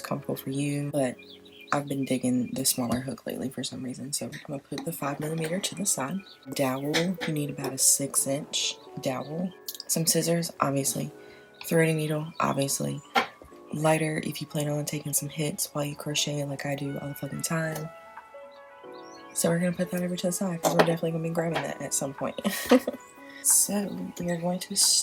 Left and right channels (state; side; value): identical; both; correlation 1.00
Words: comfortable for you, but I've been digging the smaller hook lately for some reason, so I'm going to put the 5mm to the side. Dowel, you need about a 6-inch dowel. Some scissors, obviously. Threading needle, obviously. Lighter if you plan on taking some hits while you crochet like I do all the fucking time. So we're going to put that over to the side because we're definitely going to be grabbing that at some point. So we are going to